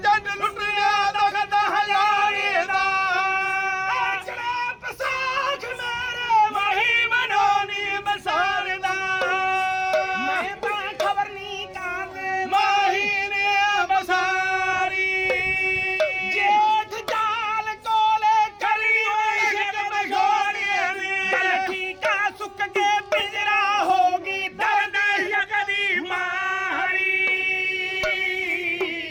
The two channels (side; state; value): both; identical; correlation 1.00